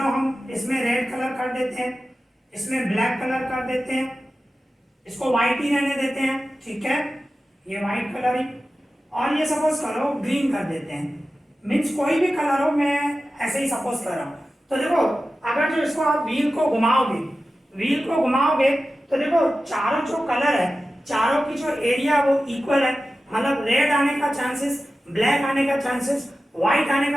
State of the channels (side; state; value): both; normal; correlation 0.94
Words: हम इसमें रेड कलर कर देते हैं, इसमें ब्लैक कलर कर देते हैं, इसको व्हाइट ही रहने देते हैं, ठीक है, ये व्हाइट कलर ही, और ये सपोज करो ग्रीन कर देते हैं। मीन्स कोई भी कलर हो, मैं ऐसे ही सपोज कर रहा हूँ। तो देखो अगर जो इसको आप व्हील को घुमाओगे, व्हील को घुमाओगे तो देखो चारों जो कलर है, चारों की जो एरिया वो इक्वल है। मतलब रेड आने का चांसेस, ब्लैक आने का चांसेस, व्हाइट आने